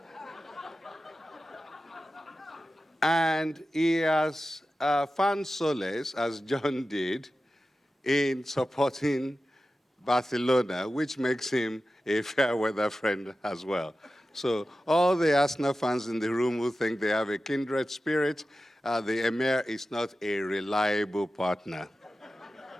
And he has found solace, as John did, in supporting Barcelona, which makes him a fair weather friend as well. So all the Arsenal fans in the room who think they have a kindred spirit, the Emir is not a reliable partner.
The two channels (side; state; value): both; normal; correlation 0.93